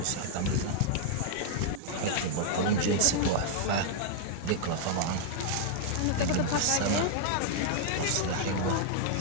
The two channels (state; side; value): different; both; correlation -0.01